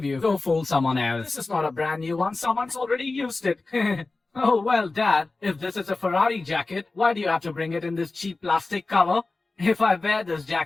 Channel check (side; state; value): right; quieter; 3.5 dB